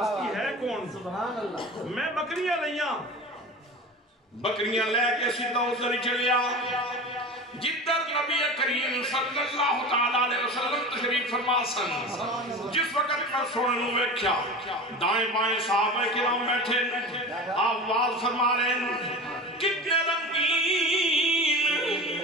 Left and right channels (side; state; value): both; normal; correlation 0.32